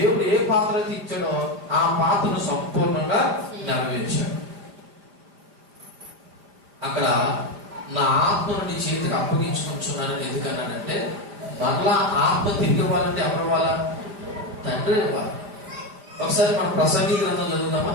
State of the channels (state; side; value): late; left; 5.0 ms